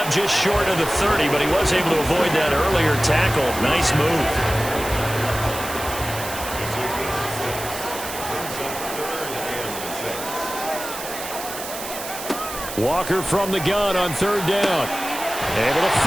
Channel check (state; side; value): noise; right; hiss, 9 dB below the sound